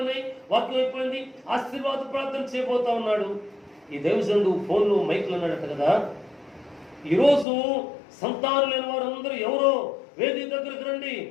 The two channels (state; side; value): drops out; right; at 7.5 s